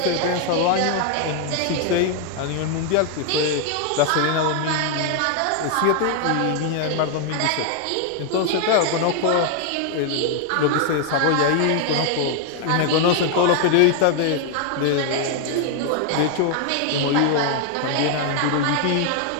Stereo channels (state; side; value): different; both; correlation 0.00